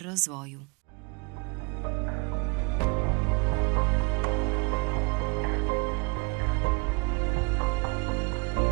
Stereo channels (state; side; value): quieter; left; 29.4 dB